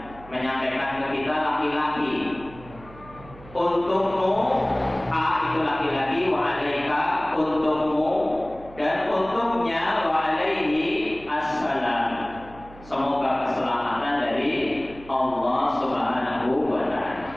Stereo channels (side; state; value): right; noise; hum, 20 dB below the sound